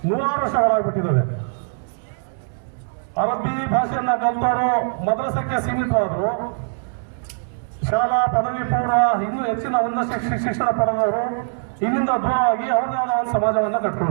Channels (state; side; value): silent; left; 64 dB below the other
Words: 100 ವರ್ಷಗಳಾಗ್ಬಿಟ್ಟಿದ್ದಾವೆ. ಅರಬ್ಬಿ ಭಾಷೆಯನ್ನ ಕಲಿತವರು ಮದ್ರಸಕ್ಕೆ ಸೀಮಿತವಾದರು, ಶಾಲಾ ಪದವಿ ಪೂರ್ವ ಇನ್ನೂ ಹೆಚ್ಚಿನ ಉನ್ನತ ಶಿಕ್ಷಣ ಪಡೆದವರು ಇಲ್ಲಿಂದ ದೂರವಾಗಿ ಅವರದೇ ಆದ ಒಂದು ಸಮಾಜವನ್ನು